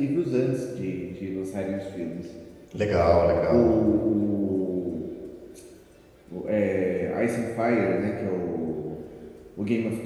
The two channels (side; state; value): both; identical; correlation 1.00